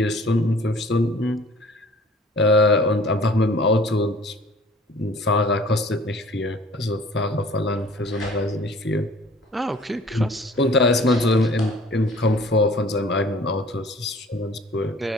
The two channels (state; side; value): normal; both; correlation 0.51